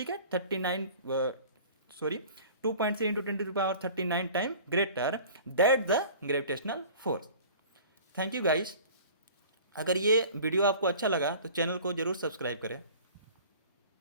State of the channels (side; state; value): both; inverted; correlation -0.44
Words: है, 2.3 into 10⁻39 time greater that the gravitational force. Thank you guys. अगर ये वीडियो आपको अच्छा लगा तो चैनल को जरूर सब्सक्राइब करें।